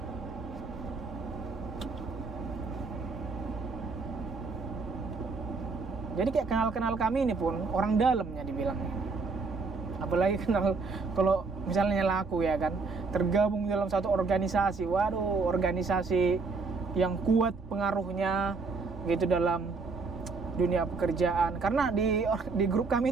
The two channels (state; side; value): quieter; left; 4.2 dB